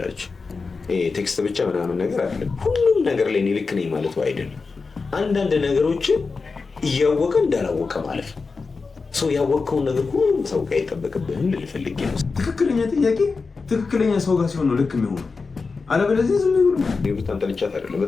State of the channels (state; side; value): quieter; right; 4.4 dB